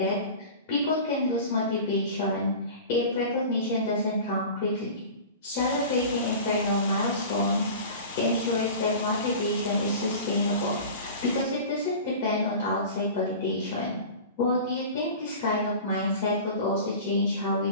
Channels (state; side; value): inverted; both; correlation -0.36